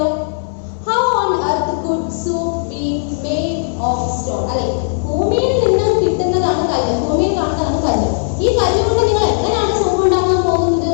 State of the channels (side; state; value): right; silent; digital silence